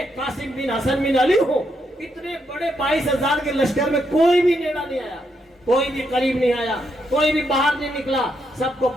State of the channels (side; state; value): both; normal; correlation 0.79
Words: قاسم بن حسن بن علی ہوں. اتنے بڑے 22,000 کے لشکر میں کوئی بھی نیڑا نہیں آیا, کوئی بھی قریب نہیں آیا, کوئی بھی باہر نہیں نکلا. سب کو